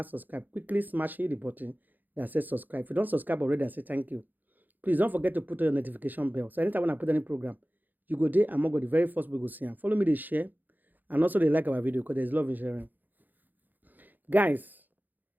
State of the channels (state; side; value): late; left; 0.086 ms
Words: subscribe, quickly smash the button that says subscribe. If you don't subscribe already, I say thank you. Please don't forget to put on your notification bell. So anytime when I put any program, you go there and go the very first we go see. And follow me, they share, and also they like our video because there's love in sharing. Guys,